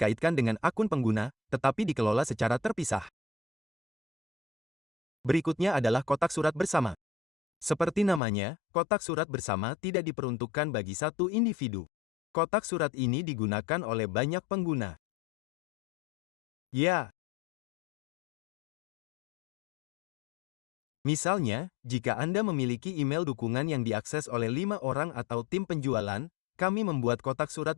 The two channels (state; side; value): drops out; right; at 8.2 s